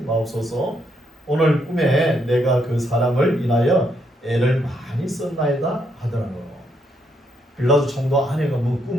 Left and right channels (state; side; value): normal; both; correlation 0.76